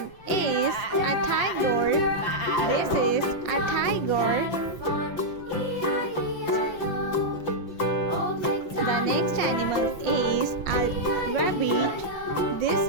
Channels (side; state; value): right; late; 5.8 ms